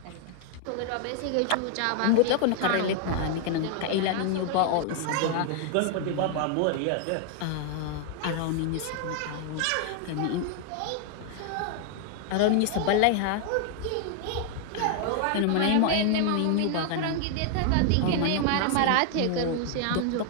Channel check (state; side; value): different; both; correlation 0.00